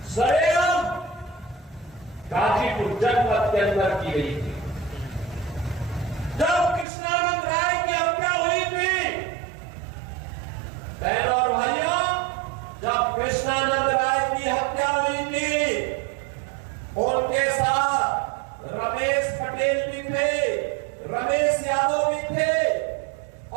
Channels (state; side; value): drops out; left; at 6.9 s